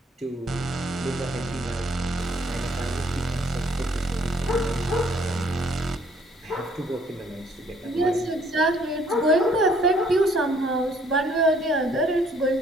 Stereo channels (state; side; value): normal; both; correlation 0.63